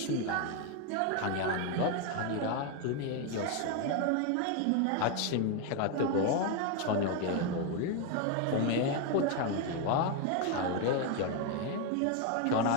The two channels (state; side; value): different; both; correlation 0.01